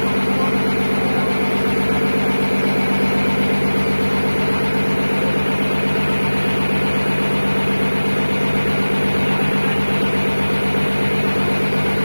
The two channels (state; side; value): inverted; both; correlation -1.00